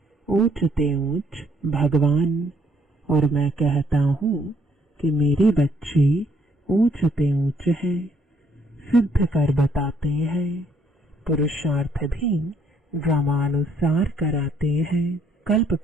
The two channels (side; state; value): both; normal; correlation 0.67